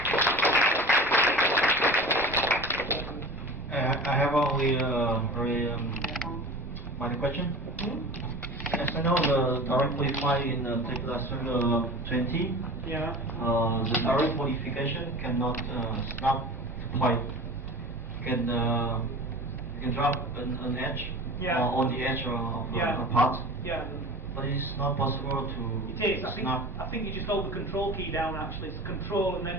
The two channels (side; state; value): both; normal; correlation 0.36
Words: I have only one question. As I know, the direct qualify in Tekla Userday 20, Yeah. the direct modification cannot snap the point. You can drop an edge on the edge of a part. Yeah. But it's not possible to It is. snap. I think you just hold the control key down actually. It's control and